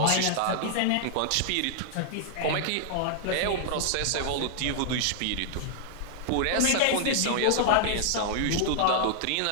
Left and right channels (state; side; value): different; both; correlation -0.01